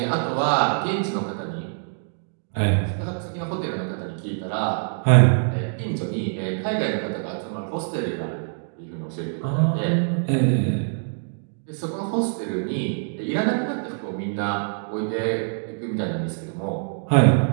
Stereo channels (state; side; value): silent; left; digital silence